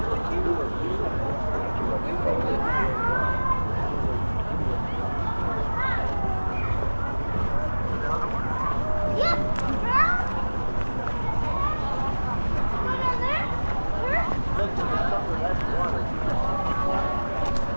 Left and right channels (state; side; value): inverted; both; correlation -1.00